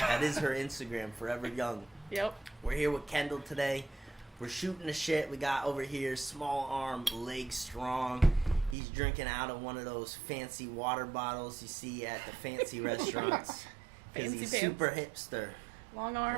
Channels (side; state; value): left; drops out; at 8.8 s